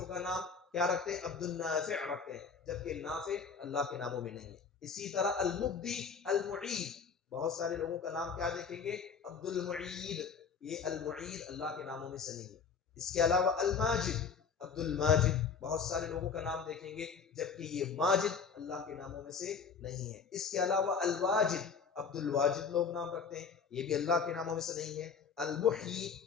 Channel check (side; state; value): right; quieter; 5.9 dB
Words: کا نام کیا رکھتے ہیں؟ عبد النافع رکھتے ہیں، جبکہ نافع اللہ کے ناموں میں نہیں ہے۔ اسی طرح المبدی، المعید، بہت سارے لوگوں کا نام کیا دیکھیں گے؟ عبد المعید، یہ المعید اللہ کے ناموں میں سے نہیں ہے۔ اس کے علاوہ الماجد، عبد الماجد، بہت سارے لوگوں کا نام دیکھیں گے جبکہ یہ ماجد اللہ کے ناموں میں سے نہیں ہے۔ اس کے علاوہ الواجد، عبد الواجد لوگ نام رکھتے ہیں، یہ بھی اللہ کے ناموں میں سے نہیں ہے۔ المحیی،